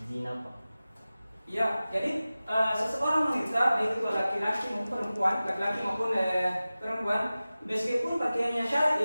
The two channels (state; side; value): inverted; both; correlation -0.96